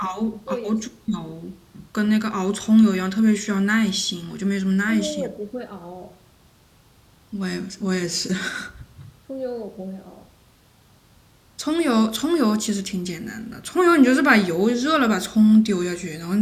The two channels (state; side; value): identical; both; correlation 1.00